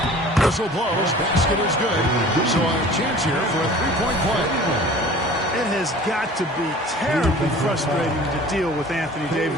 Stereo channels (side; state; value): both; normal; correlation 0.45